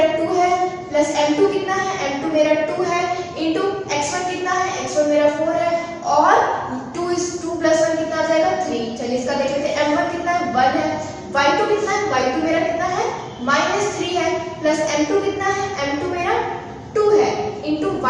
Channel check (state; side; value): identical; both; correlation 1.00